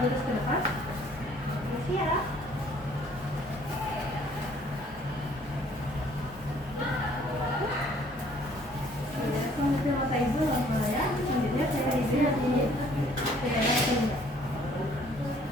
ke depan. Ya. Kemudian mata ibu lama ya. Selanjutnya saya lihat ini. Saya lihat.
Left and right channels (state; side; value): normal; both; correlation 0.59